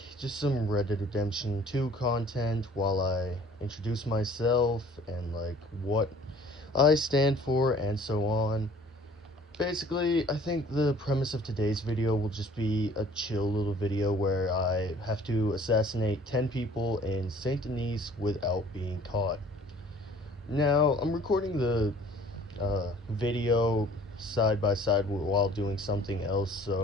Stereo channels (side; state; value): both; normal; correlation 0.53